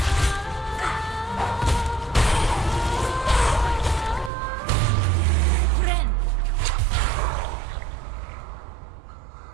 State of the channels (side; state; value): left; drops out; at 4.3 s